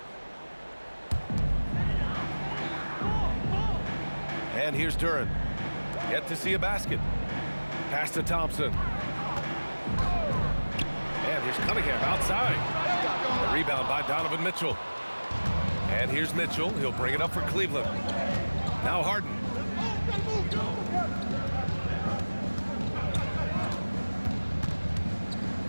And here's Duran. Yet to see a basket. Pass to Thompson. And here's Cunningham outside. A rebound by Donovan Mitchell. And here's Mitchell. He'll bring it up for Cleveland. Now Harden.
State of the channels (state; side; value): inverted; both; correlation -1.00